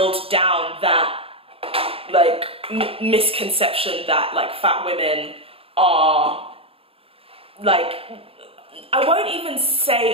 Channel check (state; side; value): late; left; 0.27 ms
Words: down that like misconception that like fat women are, like, I won't even